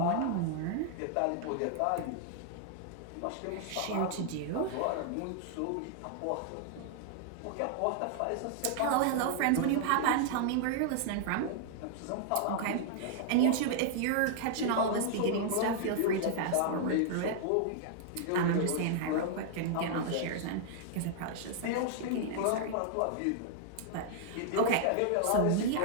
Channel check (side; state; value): both; different; correlation -0.01